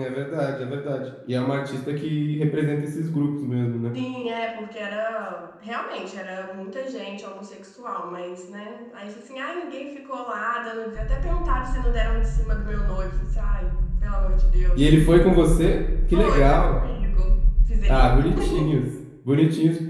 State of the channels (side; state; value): both; identical; correlation 1.00